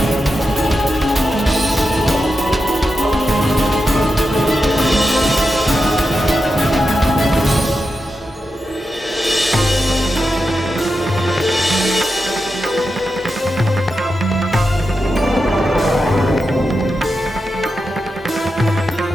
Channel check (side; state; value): both; normal; correlation 0.89